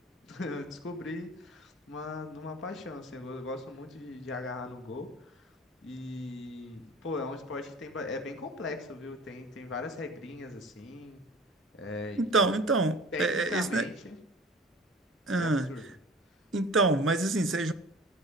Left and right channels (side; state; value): both; normal; correlation 0.42